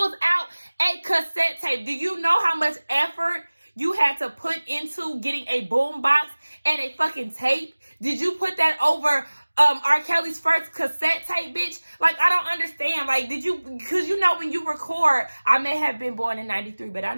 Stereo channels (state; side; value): inverted; both; correlation -1.00